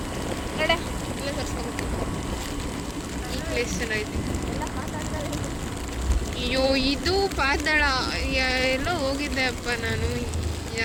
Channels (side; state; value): both; identical; correlation 1.00